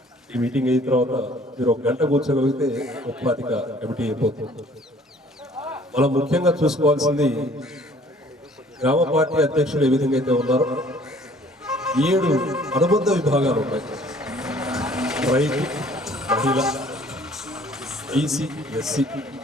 ఈ మీటింగ్ అయిన తర్వాత మీరు 1 గంట కూర్చోగలిగితే 35 కమిటీ అయిపోతుంది. మనం ముఖ్యంగా చూసుకోవాల్సింది గ్రామ పార్టీ అధ్యక్షులు ఏ విధంగా అయితే ఉన్నారో 7 అనుబంధ విభాగాలు ఉన్నాయి. రైతు, మహిళ, బీసీ, ఎస్సీ,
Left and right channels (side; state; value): both; normal; correlation 0.56